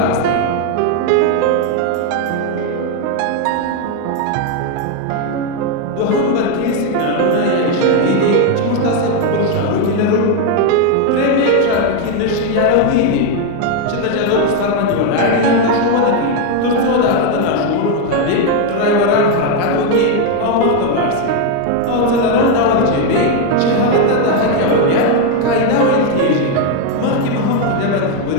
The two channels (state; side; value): different; both; correlation 0.01